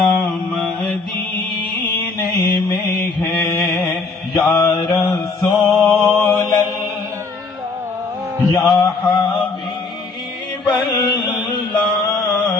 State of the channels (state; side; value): quieter; right; 4.1 dB